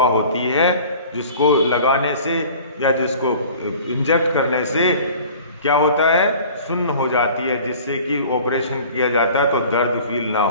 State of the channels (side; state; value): both; inverted; correlation -0.45